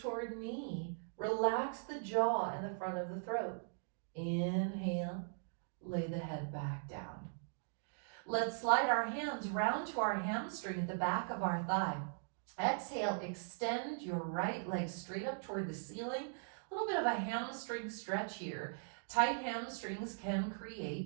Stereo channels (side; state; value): left; silent; digital silence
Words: knee. Relax the jaw and the front of the throat. Inhale, lay the head back down. Let's slide our hands round to our hamstring at the back of our thigh. Exhale, extend your right leg straight up toward the ceiling. A little bit of a hamstring stretch here. Tight hamstrings can